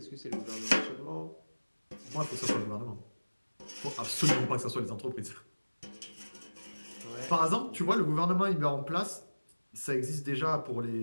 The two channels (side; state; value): both; inverted; correlation -1.00